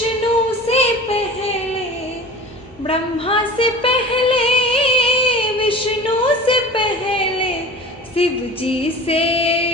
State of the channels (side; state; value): both; normal; correlation 0.38